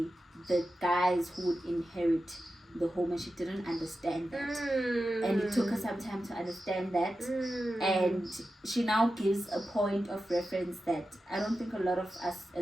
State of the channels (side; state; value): both; normal; correlation 0.92